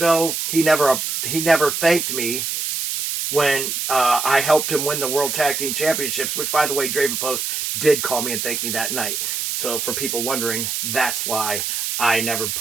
he never thanked me when I helped him win the World Tag Team Championships, which by the way, Draven Post did call me and thank me that night. So for people wondering, that's why I never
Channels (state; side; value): noise; right; hiss, 2 dB below the sound